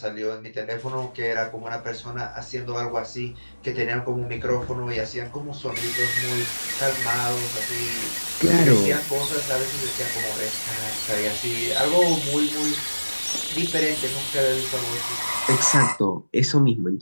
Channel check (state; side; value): inverted; both; correlation -1.00